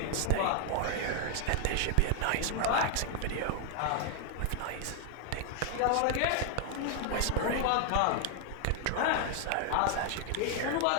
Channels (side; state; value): both; different; correlation 0.00